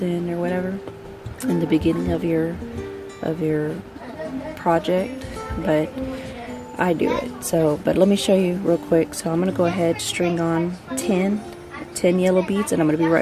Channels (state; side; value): identical; both; correlation 1.00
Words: in or whatever in the beginning of your project, but I do it. So, but let me show you real quick. So I'm gonna go ahead, string on 10 yellow beads, and I'm gonna be